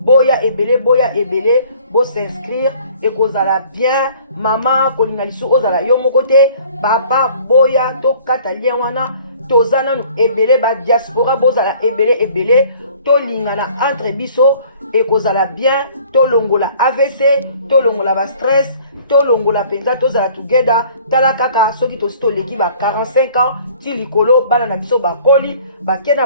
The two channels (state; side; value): inverted; both; correlation -0.53